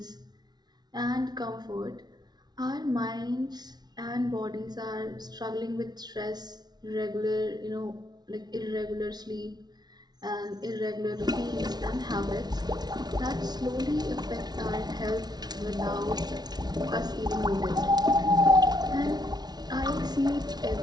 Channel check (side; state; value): left; late; 0.19 ms